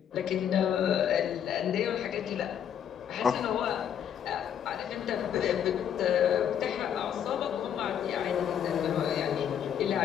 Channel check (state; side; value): quieter; right; 9.1 dB